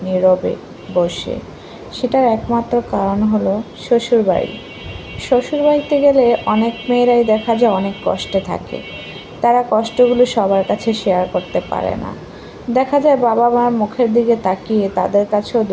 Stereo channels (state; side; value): identical; both; correlation 1.00